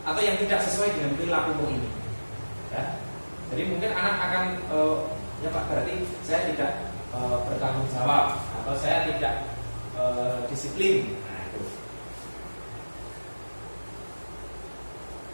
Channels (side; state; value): both; inverted; correlation -1.00